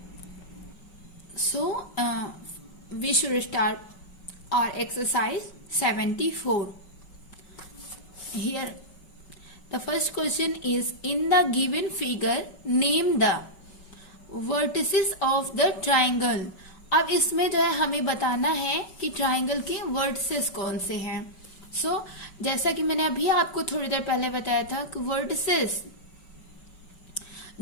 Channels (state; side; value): late; right; 5.3 ms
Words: we should start our exercise 74. Here the first question is, in the given figure name the vertices of the triangle. अब इसमें जो है हमें बताना है कि ट्राइंगल के वर्टिसेस कौन से हैं। सो जैसा कि मैंने अभी आपको थोड़ी देर पहले बताया था कि वर्टिसेस